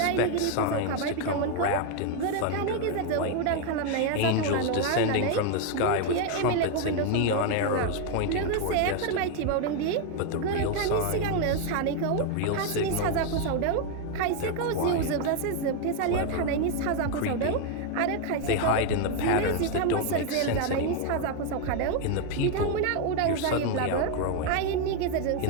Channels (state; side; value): different; both; correlation 0.01